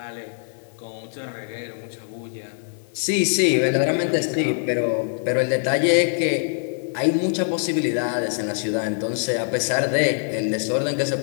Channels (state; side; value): silent; right; 63 dB below the other